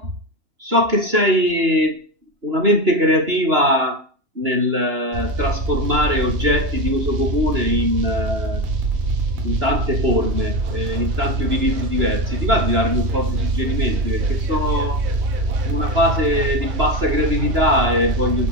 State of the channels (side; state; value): left; late; 2.9 ms